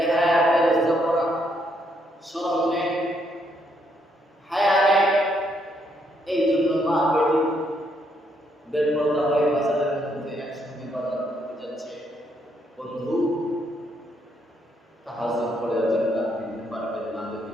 বেলজ্জা করা, শরম নেই, হায়া নেই। এই জন্য মা বেটি বেপরদা হয়ে বাজারের মধ্যে একসঙ্গে বাজার করতে যাচ্ছে। বন্ধু, তাহাজ্জুদ পড়ে জান্নাত নিতে পারবেন না যদি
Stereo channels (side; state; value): both; normal; correlation 0.74